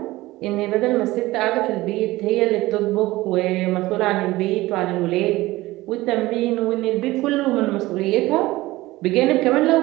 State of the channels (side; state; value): left; quieter; 18.5 dB